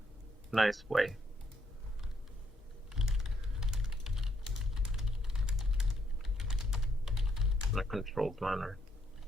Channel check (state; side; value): normal; both; correlation 0.74